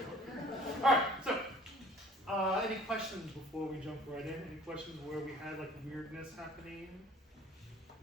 Alright, so any questions before we jump right in? Any questions where we had like weirdness happening?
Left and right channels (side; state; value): both; normal; correlation 0.52